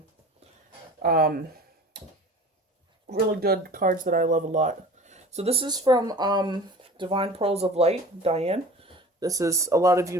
really good cards that I love a lot. So this is from Divine Pearls of Light, Diane. This is, a lot of you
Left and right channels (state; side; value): normal; both; correlation 0.41